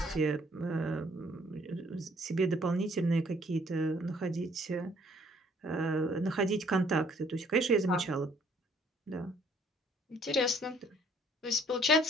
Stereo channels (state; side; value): normal; both; correlation 0.62